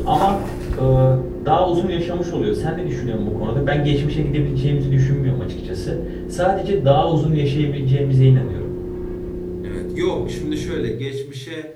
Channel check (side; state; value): both; identical; correlation 1.00